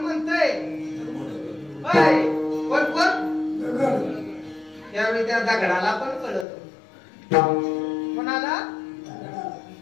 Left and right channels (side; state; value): right; drops out; at 6.5 s